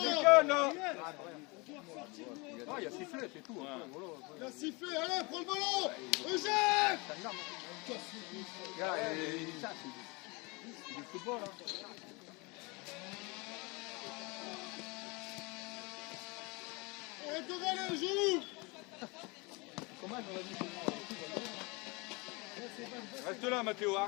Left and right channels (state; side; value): quieter; right; 27.5 dB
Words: là. Ah, il y a sifflé, c'est tout. Il a sifflé, allez, prends le ballon. Eugène. Regarde, ça, c'est du football. Hein. Arrête de râler, joue. Comment j'aurais dit Reste là, Mathéo, hein,